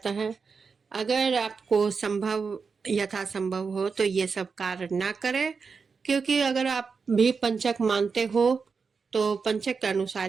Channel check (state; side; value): quieter; left; 5.2 dB